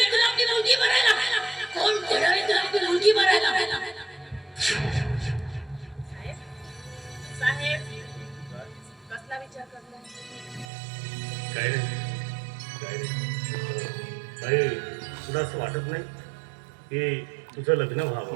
तुला आपली मुलगी मरायला कोण देणार आहे तुला आपली मुलगी मरायला साहेब कसला विचार करताय काय नाही भाई तुला असं वाटत नाही की तुझं लग्न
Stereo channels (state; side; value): drops out; left; at 10.7 s